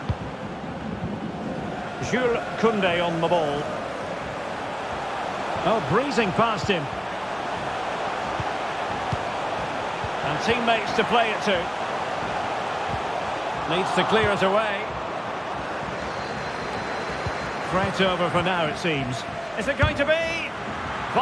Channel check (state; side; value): identical; both; correlation 1.00